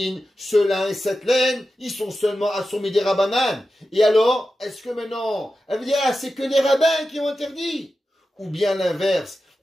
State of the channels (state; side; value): normal; both; correlation 0.92